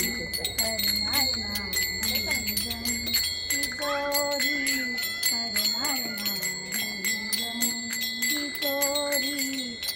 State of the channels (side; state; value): both; identical; correlation 1.00